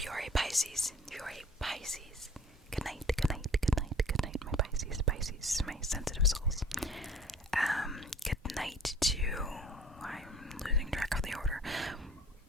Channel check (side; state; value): both; normal; correlation 0.50